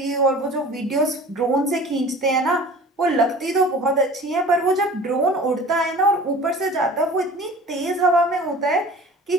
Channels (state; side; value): normal; both; correlation 0.42